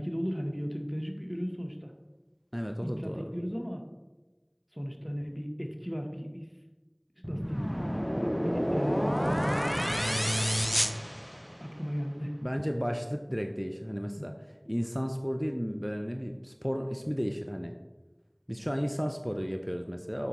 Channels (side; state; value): both; identical; correlation 1.00